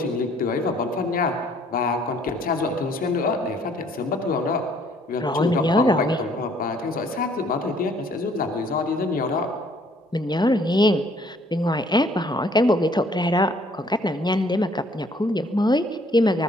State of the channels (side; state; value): both; normal; correlation 0.61